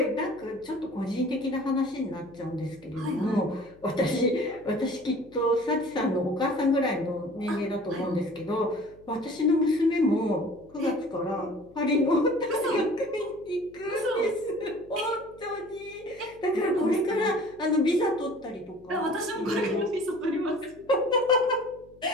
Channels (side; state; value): left; noise; hum, 26 dB below the sound